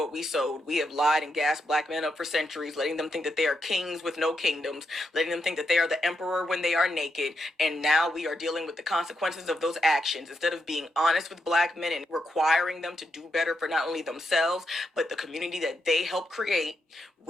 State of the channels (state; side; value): normal; both; correlation 0.82